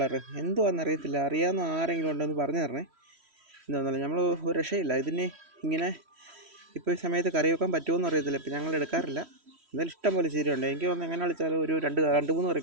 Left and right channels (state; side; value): late; left; 3.1 ms